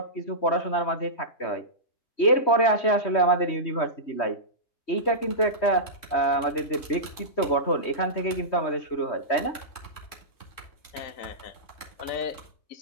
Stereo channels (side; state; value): right; late; 3.2 ms